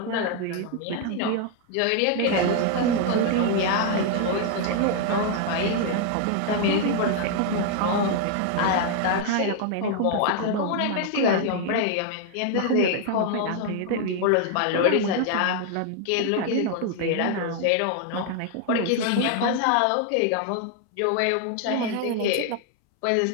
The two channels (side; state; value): both; different; correlation 0.00